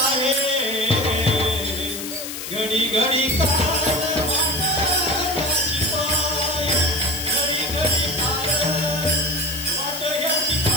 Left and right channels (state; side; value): noise; left; hiss, 8 dB below the sound